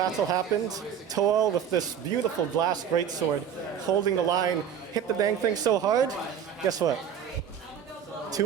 happened. Toel, with this beautiful glass greatsword, holding the line, hit the dang thing so hard. Guess what?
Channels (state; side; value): quieter; left; 8.3 dB